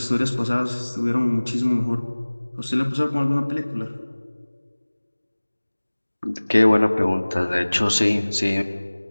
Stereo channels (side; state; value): both; inverted; correlation -1.00